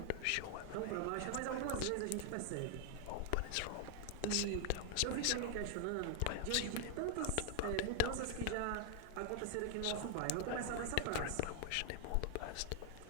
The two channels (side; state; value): both; different; correlation 0.00